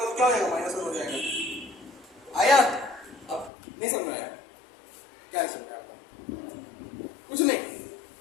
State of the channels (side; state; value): right; drops out; at 3.5 s